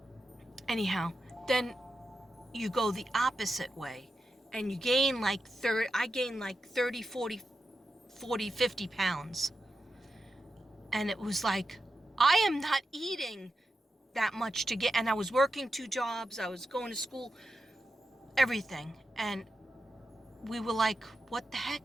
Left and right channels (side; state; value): both; normal; correlation 0.89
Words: Anyhow, then you go the opposite way and you gain like 30, I gained like 30, 40, 50 pounds. And it was like, I am not eating that much to get, and I was working 2 jobs, I was going to school, everything. And we were like, what the